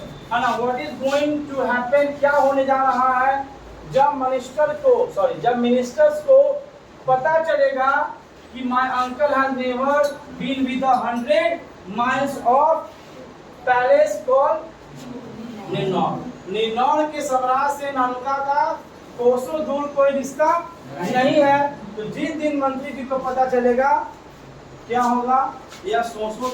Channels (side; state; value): both; identical; correlation 1.00